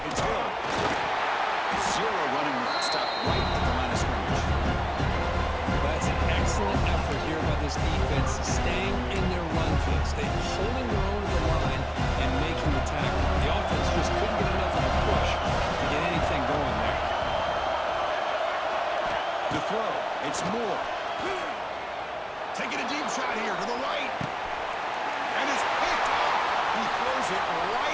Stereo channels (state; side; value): identical; both; correlation 1.00